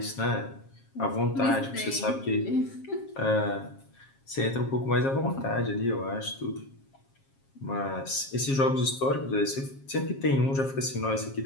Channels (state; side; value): late; right; 7.4 ms